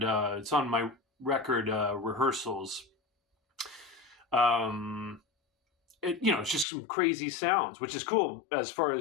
it's on my record rehearsals. It's just some crazy sounds, which is cool as far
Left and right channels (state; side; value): drops out; right; at 6.7 s